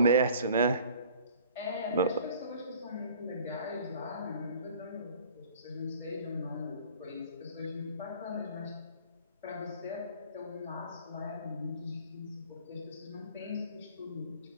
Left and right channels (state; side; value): inverted; both; correlation -0.50